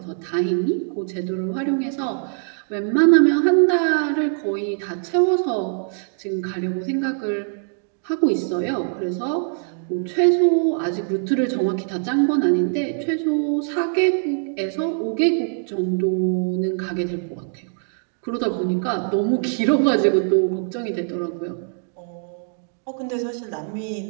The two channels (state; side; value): silent; left; digital silence